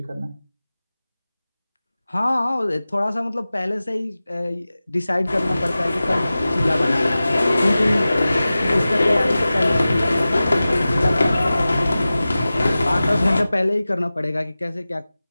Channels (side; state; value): both; inverted; correlation -0.96